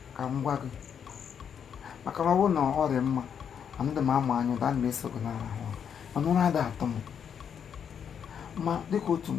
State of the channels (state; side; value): quieter; right; 7.8 dB